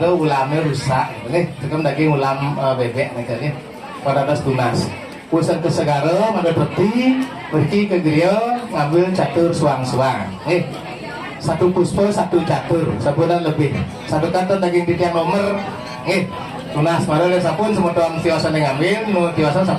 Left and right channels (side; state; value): both; identical; correlation 1.00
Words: ulamnya rusak. Nih, tekan daging ulam bebek nih kayaknya. Pada atas tunas. Pusat ke segara, mangga peti, pergi ke geria, ngambil catur suang-suang. Nih, satu puspa, satu catur, sabunan lebih. Satu kantor daging titian nomor. Nih, tunas. Mangga sapun semua tuan tiosan yang ngambil, nu tiosan